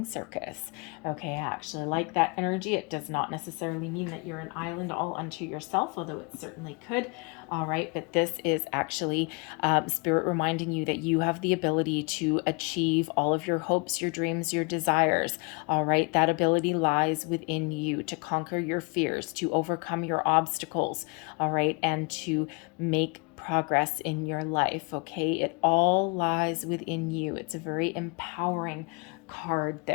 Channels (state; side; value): quieter; right; 30.8 dB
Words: Circus. Okay, I actually like that energy. It does not necessarily mean that you're an island all unto yourself, although it certainly could. All right, but this is actually Spirit reminding you that you have the ability to achieve all of your hopes, your dreams, your desires. All right, that ability lies within you to conquer your fears, to overcome your obstacles. All right, and to make progress in your life. Okay, it all lies within you. It's a very empowering card